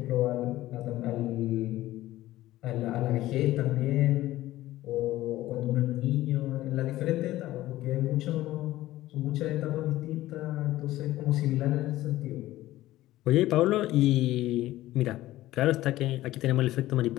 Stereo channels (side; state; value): right; quieter; 15.8 dB